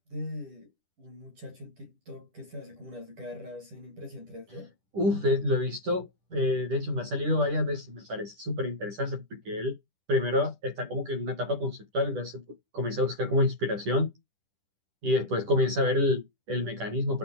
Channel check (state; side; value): late; left; 10 ms